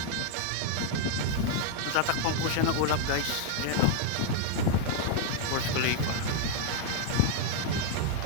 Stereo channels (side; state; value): both; different; correlation 0.00